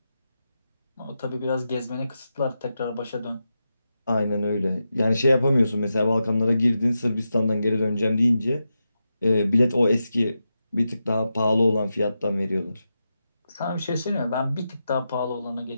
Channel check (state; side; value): inverted; both; correlation -0.89